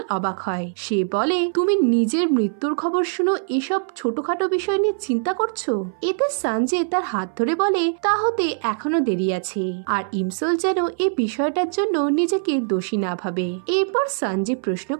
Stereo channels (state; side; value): silent; left; 61 dB below the other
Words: অবাক হয়। সে বলে, তুমি নিজের মৃত্যুর খবর শুনো এসব ছোটখাটো বিষয় নিয়ে চিন্তা করছো? এতে সঞ্জে তার হাত ধরে বলে, তা হতে এখনো দেরি আছে। আর ইমসোল যেন এই বিষয়টার জন্য নিজেকে দোষী না ভাবে। এরপর সঞ্জে প্রশ্ন